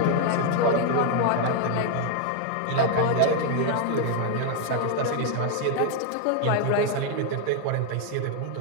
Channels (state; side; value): different; both; correlation 0.00